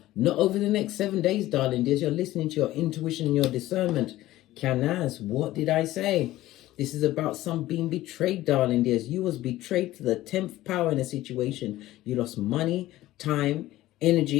Not over the next 7 days, darling dears. You're listening to your intuition and your discernment. Canaz, what did I say? This is about some being betrayed, darling dears. You was betrayed to the 10th power in a situation. You lost money, time, energy,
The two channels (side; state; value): right; quieter; 15.8 dB